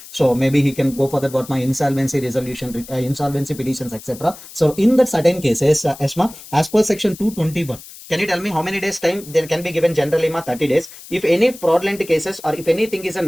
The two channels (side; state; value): left; noise; hiss, 17 dB below the sound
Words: So maybe he can go for that what my insolvency resolution, insolvency petitions, etc. So in that certain cases, ESMA, as per section 221, can you tell me how many days time there can be given generally ma 30 days? If any fraudulent cases or if anything is